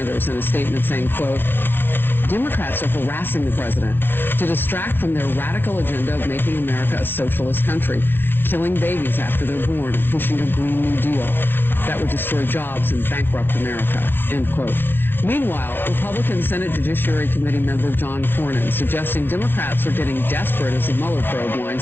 in a statement saying, quote, Democrats are harassing the president to distract from their radical agenda of making America a socialist country, killing babies after they're born, and pushing a Green New Deal that would destroy jobs and bankrupt America, end quote. Meanwhile, Republican Senate Judiciary Committee member John Cornyn suggesting Democrats are getting desperate as the Mueller probe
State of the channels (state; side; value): late; right; 0.10 ms